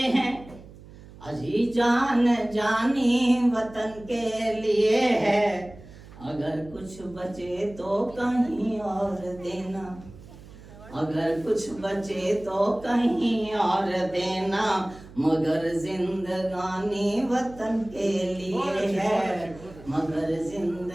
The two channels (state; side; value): noise; right; hum, 19 dB below the sound